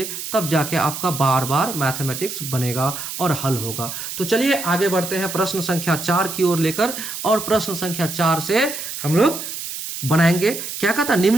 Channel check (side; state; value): right; noise; hiss, 7 dB below the sound